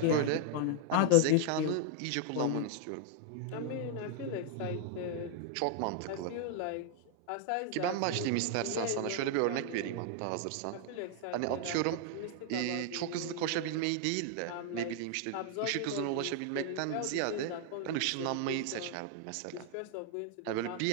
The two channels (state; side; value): different; both; correlation 0.00